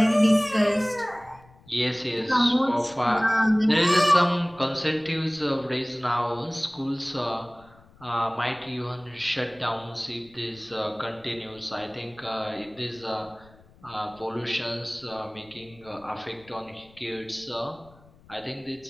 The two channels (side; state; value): left; noise; rumble, 26 dB below the sound